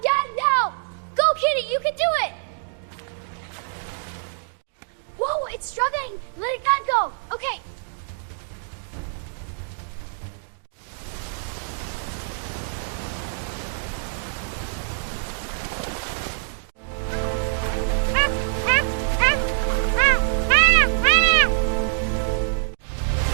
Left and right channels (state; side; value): silent; left; digital silence